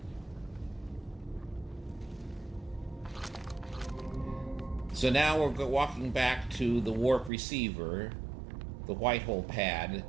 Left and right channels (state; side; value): drops out; left; at 7.3 s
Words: So now we're walking back to the warp receiver, the white hole pad,